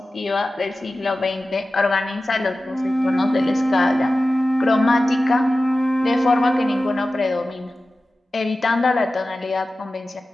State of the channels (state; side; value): normal; both; correlation 0.95